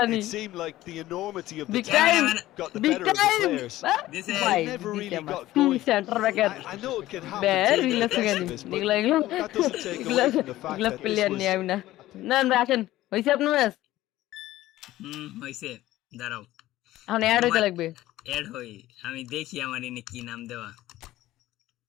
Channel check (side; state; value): right; quieter; 15.6 dB